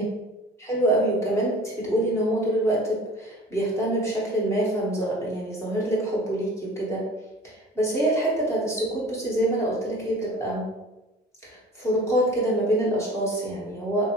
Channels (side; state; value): both; normal; correlation 0.43